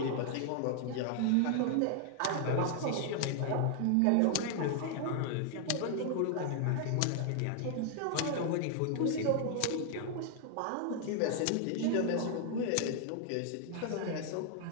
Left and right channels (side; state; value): both; different; correlation 0.00